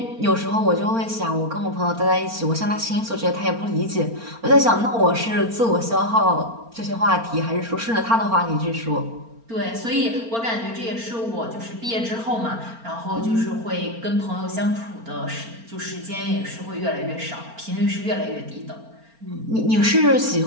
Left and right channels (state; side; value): late; left; 4.4 ms